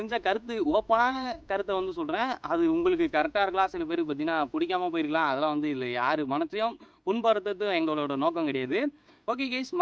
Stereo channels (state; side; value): identical; both; correlation 1.00